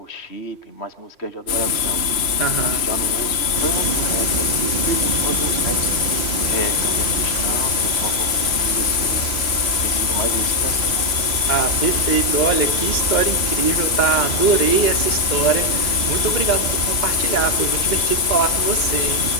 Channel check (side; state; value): right; late; 3.0 ms